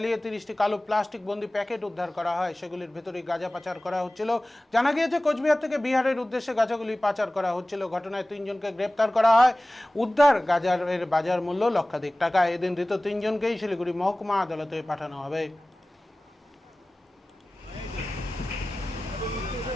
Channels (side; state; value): both; normal; correlation 0.98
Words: 30টি কালো প্লাস্টিক বন্দি প্যাকেট উদ্ধার করা হয়। সেগুলির ভেতরে গাঁজা পাচার করা হচ্ছিল। জানা গিয়েছে কোচবিহার থেকে বিহারের উদ্দেশ্যে গাঁজাগুলি পাচার করা হচ্ছিল। ঘটনায় 3 জনকে গ্রেপ্তার করা হয়। উদ্ধার গাঁজার বাজার মূল্য লক্ষাধিক টাকা। এদিন ধৃত 3 জনকেই শিলিগুড়ি মহকুমা আদালতে পাঠানো হবে।